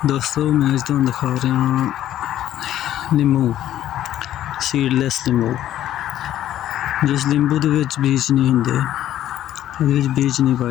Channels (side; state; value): right; quieter; 12.3 dB